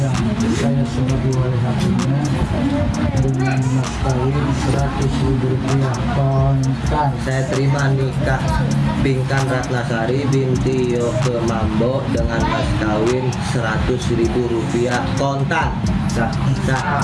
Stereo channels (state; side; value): identical; both; correlation 1.00